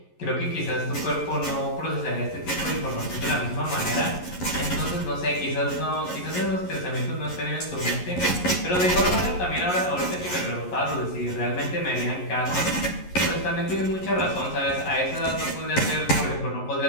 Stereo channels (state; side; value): late; right; 11 ms